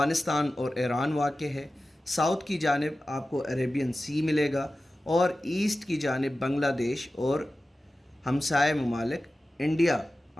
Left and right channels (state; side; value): normal; both; correlation 0.94